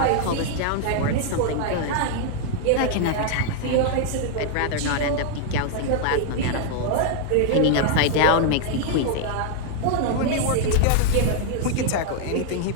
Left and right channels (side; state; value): both; different; correlation 0.00